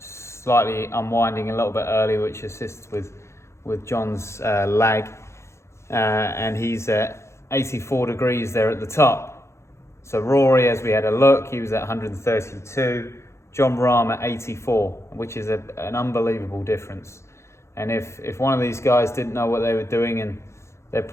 unwinding a little bit early, which assists with John's lag. And he's at 84 degrees there at the top. So Rory, as we had a look, he was at 132. Jon Rahm at 84, which is an unbelievable difference. And if one of these guys didn't know what they were doing, and they'd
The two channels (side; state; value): right; late; 0.13 ms